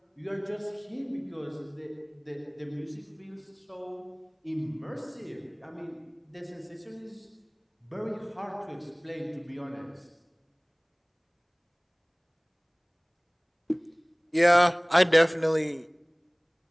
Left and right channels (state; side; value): identical; both; correlation 1.00